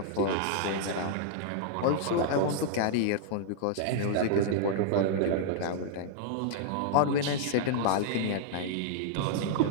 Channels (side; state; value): both; different; correlation -0.01